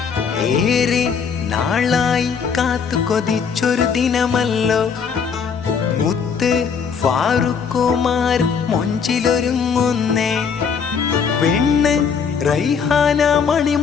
ഏറെ നാളായി കാത്തു കൊതിച്ചൊരു ദിനമല്ലോ മുത്ത് ഫാറൂഖുമാർ മൊഞ്ചിലൊരുങ്ങുന്നേ. പെണ്ണ് റൈഹാന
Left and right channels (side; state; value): right; quieter; 6.3 dB